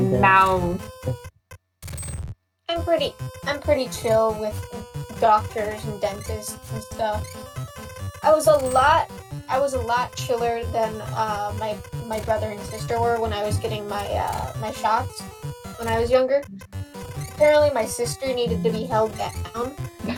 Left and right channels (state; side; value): identical; both; correlation 1.00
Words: mouth. I'm pretty chill with doctors and dentists and stuff. I was a lot chiller than my brother and sister were when I was getting my shots when I was younger. Apparently, my sister needed to be held down